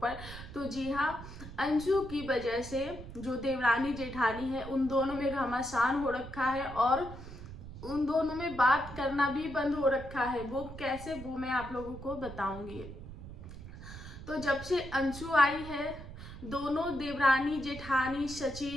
तो जी हाँ, अंशु की वजह से जो देवरानी जेठानी है उन दोनों में घमासान हो रखा है और उन दोनों में बात करना भी बंद हो रखा है। वो कैसे, वो मैं आप लोगों को बताऊंगी। तो जब से अंशु आई है, दोनों देवरानी जेठानी,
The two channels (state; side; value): noise; right; rumble, 12 dB below the sound